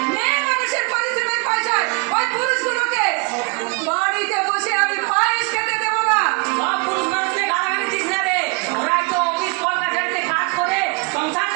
মেয়ে মানুষের পরিশ্রমের পয়সায় ওই পুরুষগুলোকে? বাড়িতে বসে আমি পায়েস খেতে দেবো না। সব পুরুষ মানুষকে গালাগালি দিস না রে, ওরাই তো অফিস কলকাতাতে কাজ করে সংসার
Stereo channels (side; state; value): left; quieter; 33.2 dB